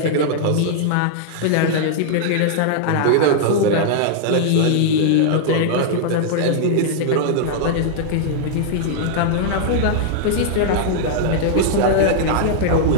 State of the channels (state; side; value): different; both; correlation -0.01